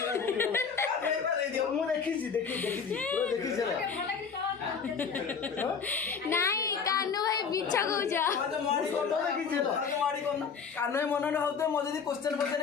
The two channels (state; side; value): quieter; right; 6.0 dB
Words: ମୁଁ ଦେଖିଛି ପୁରା ଦେଖିଛି ନାଇଁ କାହ୍ନୁ ଭାଇ ମିଛ କହୁଛ କାନ ମନରେ ହଉଥିବ ମୋ ଯଦି କ୍ୱେଶ୍ଚନ